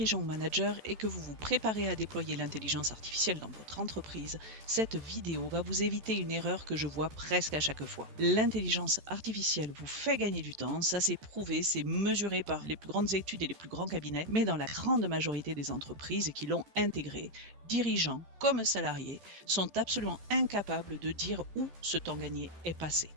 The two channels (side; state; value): left; late; 14 ms